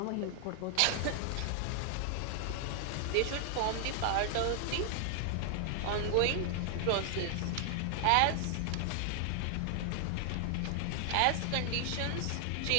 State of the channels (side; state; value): both; different; correlation 0.00